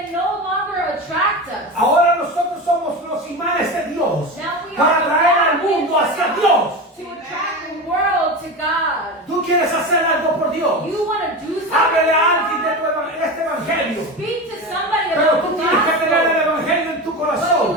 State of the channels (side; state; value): both; normal; correlation 0.24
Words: no longer attract us. Ahora nosotros somos los imanes de Dios Now we para are traer al mundo hacia Dios. to attract the world to God. Tú quieres hacer algo por Dios. You want to do something Háblele a for alguien de God. este evangelio. Speak to somebody Pero about tú the tienes que tener el gospel. evangelio en tu But corazón.